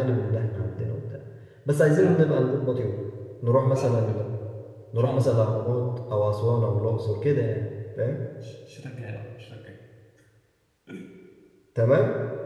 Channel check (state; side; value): identical; both; correlation 1.00